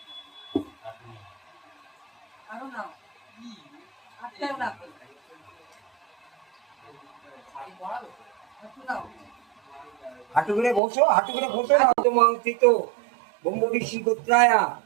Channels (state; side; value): drops out; left; at 10.8 s